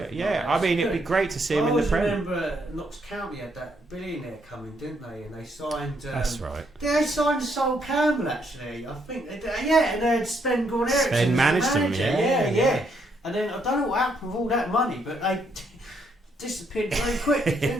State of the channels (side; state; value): both; normal; correlation 0.73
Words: Yeah, like I mean, it'd be great to see him in the Premier. I remember Notts County had that billionaire coming, didn't they? And they signed. That's right. Yeah, they signed Sol Campbell actually. I think they did. Yeah, and they had Sven Goran Eriksson. Sven managed them. Yeah. And then I don't know what happened with all that money, but they disappeared very quickly,